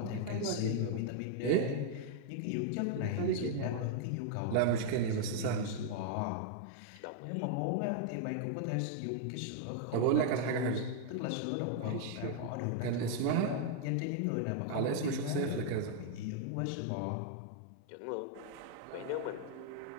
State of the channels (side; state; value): both; different; correlation 0.00